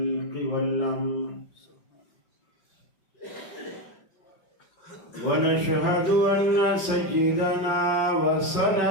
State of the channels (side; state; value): right; late; 5.8 ms